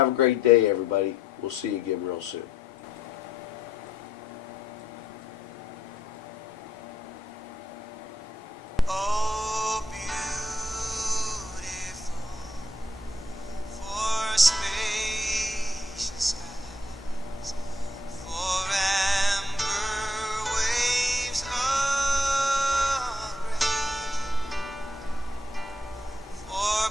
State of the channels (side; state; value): both; normal; correlation 0.73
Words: a great day, everybody. We'll see you again real soon.